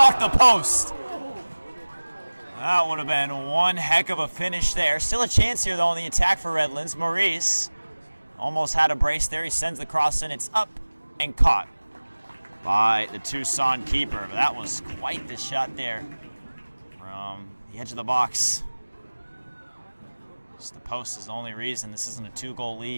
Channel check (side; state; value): both; inverted; correlation -1.00